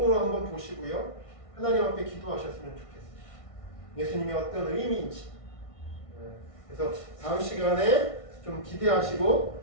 한번 보시고요, 하나님 앞에 기도하셨으면 좋겠어요. 예수님이 어떤 의미인지. 그래서 다음 시간에 좀 기대하시고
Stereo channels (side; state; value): right; late; 1.6 ms